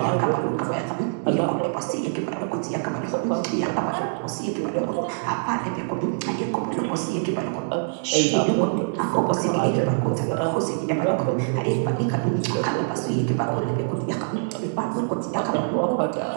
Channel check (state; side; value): silent; left; digital silence